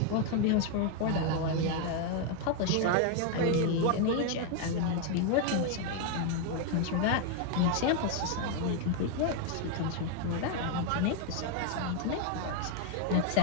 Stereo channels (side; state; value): both; different; correlation 0.01